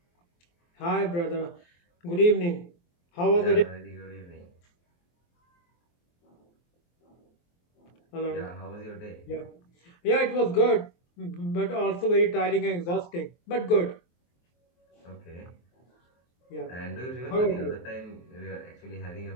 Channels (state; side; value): late; right; 23 ms